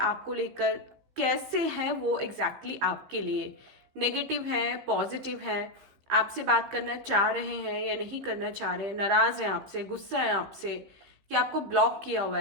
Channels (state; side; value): late; left; 15 ms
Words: लेकर, कैसे हैं वो एग्जैक्टली आपके लिए, नेगेटिव हैं, पॉजिटिव हैं, आपसे बात करना चाह रहे हैं या नहीं करना चाह रहे हैं, नाराज हैं आपसे, गुस्सा है आपसे, कि आपको ब्लॉक किया हुआ